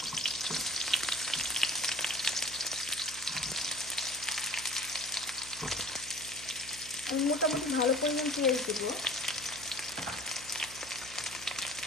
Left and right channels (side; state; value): right; noise; hum, 18 dB below the sound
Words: আমি মোটামুটি ভালো পরিমাণ পেঁয়াজ দেবো।